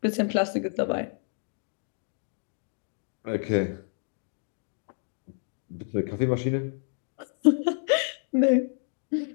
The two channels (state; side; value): silent; right; digital silence